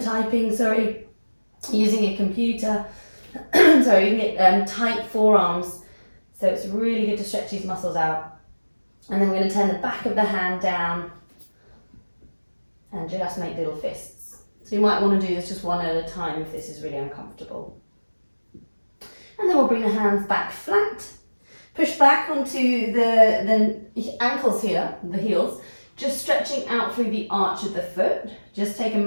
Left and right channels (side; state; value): both; inverted; correlation -1.00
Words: typing, using a computer. You can get tight forearms. So it's really good to stretch these muscles out. And then we're going to turn the back of the hand down and just make little fists. So you might want to do this just one at a time if this is really uncomfortable. And then we'll bring the hands back flat. Push back onto the ankles here, the heels, just stretching out through the arch of the foot. Just take a